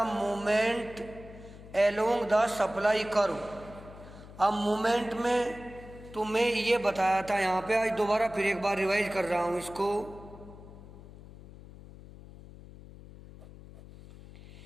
movement along the supply curve. अब मूवमेंट में तुम्हें ये बताया था, यहाँ पे आज दोबारा फिर एक बार रिवाइज कर रहा हूँ इसको।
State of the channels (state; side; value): noise; left; hum, 17 dB below the sound